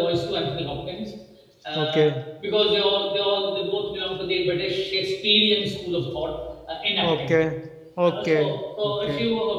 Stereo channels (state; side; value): identical; both; correlation 1.00